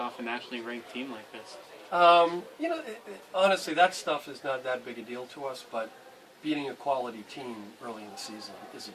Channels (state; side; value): identical; both; correlation 1.00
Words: a nationally ranked team like this? Honestly, that stuff is not that big a deal to us, but beating a quality team early in the season is a